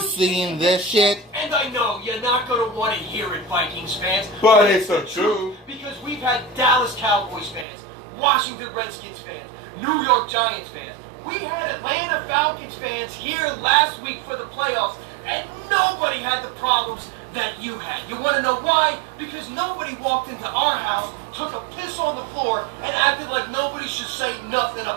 this shit? and I know you're not going to want to hear it, Vikings fans. But it's the truth. Because we've had Dallas Cowboys fans, Washington Redskins fans, New York Giants fans. We had Atlanta Falcons fans here last week for the playoffs, and nobody had the problems that you had. You want to know why? Because nobody walked into our house, took a piss on the floor, and acted like nobody should say nothing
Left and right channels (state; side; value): drops out; left; at 7.7 s